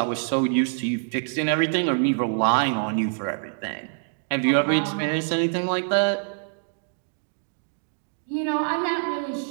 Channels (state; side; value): silent; left; digital silence